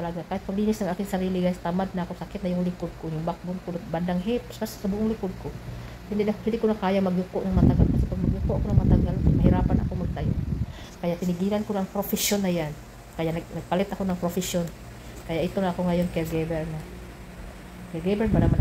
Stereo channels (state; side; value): identical; both; correlation 1.00